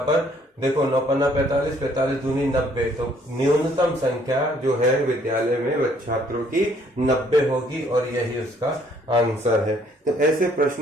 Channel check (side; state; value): both; normal; correlation 0.63